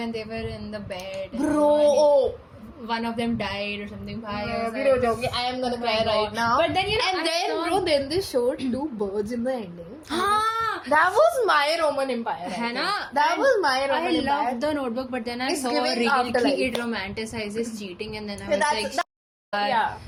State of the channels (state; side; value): identical; both; correlation 1.00